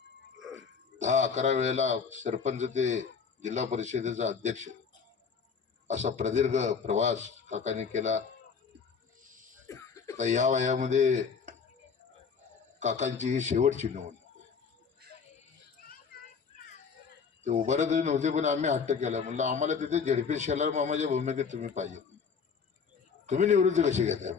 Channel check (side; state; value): right; quieter; 5.9 dB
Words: 10-11 वेळेला सरपंच ते जिल्हा परिषदेचा अध्यक्ष असा प्रदीर्घ प्रवास काकांनी केला. आता या वयामध्ये काकांची ही शेवटची निवडणूक. ते उभारत नव्हते पण आम्ही हट्ट केला, म्हणलं आम्हाला तिथे झेडपी शेलार मामाच्या भूमिकेत तुम्ही पाहिजे, तुम्ही निवृत्ती कशी घेताय